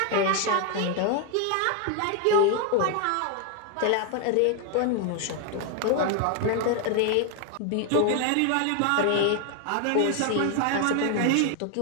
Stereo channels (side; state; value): both; different; correlation 0.01